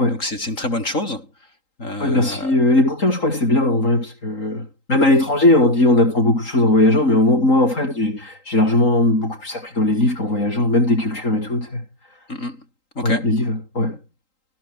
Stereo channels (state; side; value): late; right; 3.8 ms